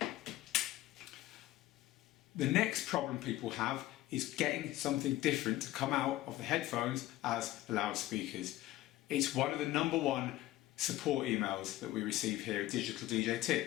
The next problem people have is getting something different to come out of the headphones as the loudspeakers. It's one of the #1 support emails that we receive here at Digital DJ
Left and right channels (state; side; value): quieter; right; 15.7 dB